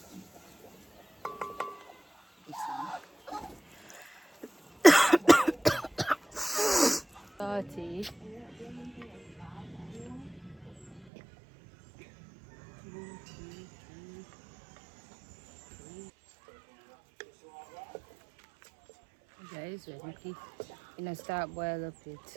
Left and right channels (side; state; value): left; drops out; at 11.1 s